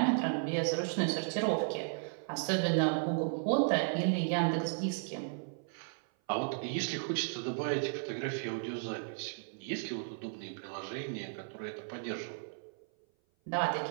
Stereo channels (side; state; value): left; silent; 55 dB below the other